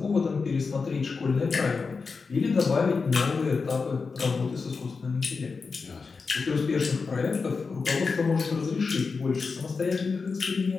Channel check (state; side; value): quieter; right; 4.7 dB